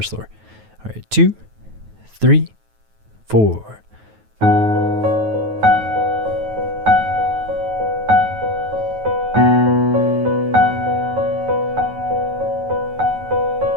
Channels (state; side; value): late; left; 9.3 ms